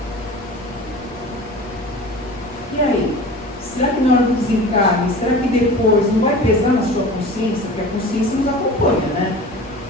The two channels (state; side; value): noise; left; rumble, 24 dB below the sound